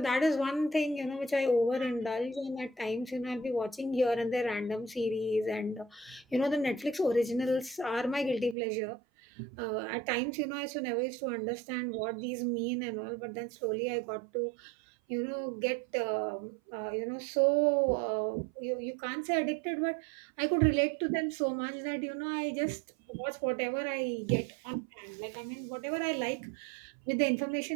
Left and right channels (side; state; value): left; drops out; at 8.6 s